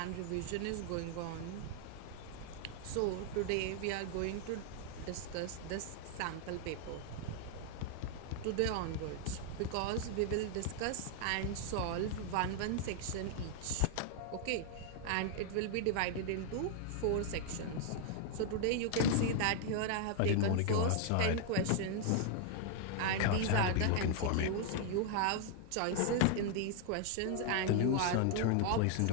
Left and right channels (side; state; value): both; different; correlation 0.00